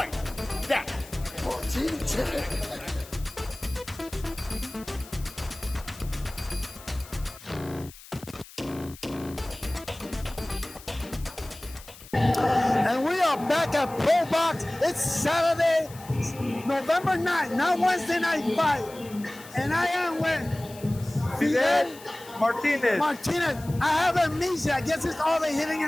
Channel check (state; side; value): noise; left; hiss, 19 dB below the sound